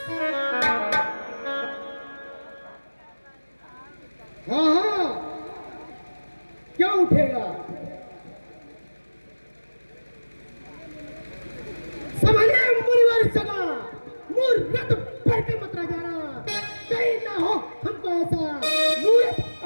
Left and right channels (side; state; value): both; inverted; correlation -1.00